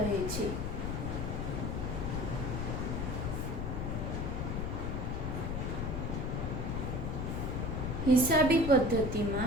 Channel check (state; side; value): noise; left; rumble, 2 dB below the sound